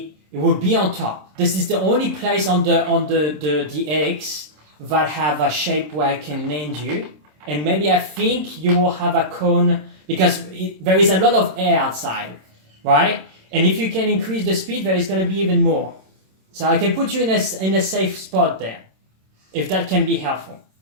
on top. This is the only place on the X that have a shape where I can land you, and maybe I think you will have a cone because there is a lot of air outside, right? And if you can increase the speed, there is going to be even more. So I can put you in a safe spot there, if that can be helpful.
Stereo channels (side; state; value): left; late; 27 ms